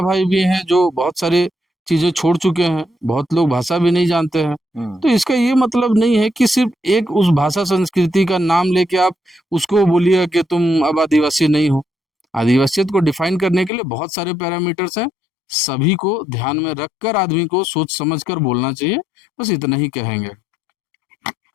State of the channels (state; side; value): drops out; right; at 13.7 s